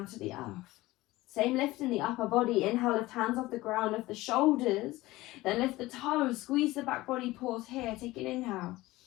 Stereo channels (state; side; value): quieter; right; 18.6 dB